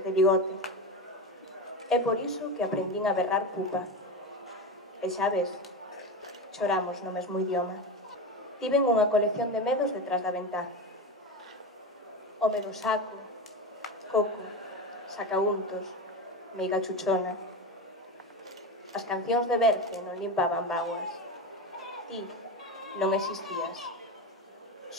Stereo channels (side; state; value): both; normal; correlation 0.20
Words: de bigote. É por iso que aprendín a berrar pupa. E xa ves, choramos no mesmo idioma. Tiven unha colección de medos detrás da ventá. O medo saco, coco, sacauntos, meiga chuchona. As cancións de Berce non limpaban bágoas. Ti non existías.